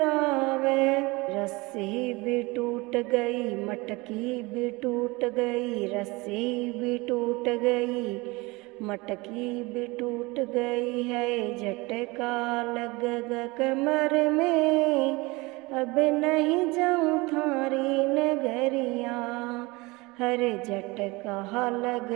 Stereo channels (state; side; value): quieter; left; 23.9 dB